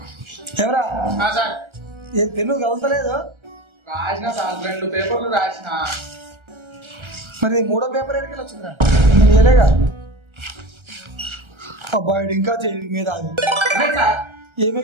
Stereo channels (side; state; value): left; late; 1.3 ms